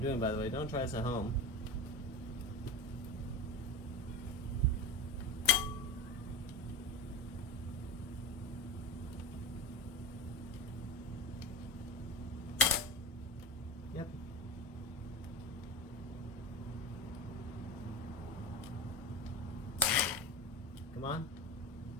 doing, by the way. Don't try this at home. Yep. Come on.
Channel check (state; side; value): normal; both; correlation 0.26